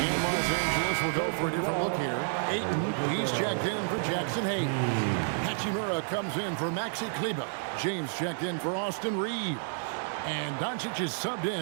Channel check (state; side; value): silent; left; 56 dB below the other